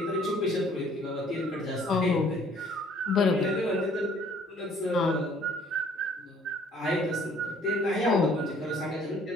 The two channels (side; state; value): both; normal; correlation 0.58